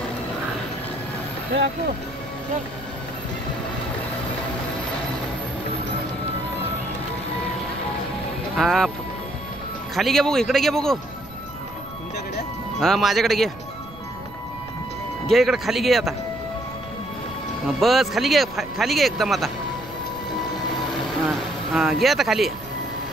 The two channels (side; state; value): right; noise; rumble, 18 dB below the sound